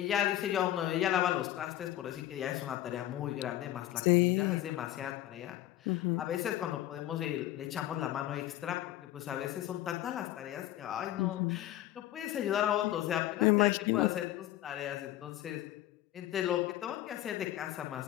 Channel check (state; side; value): quieter; right; 14.0 dB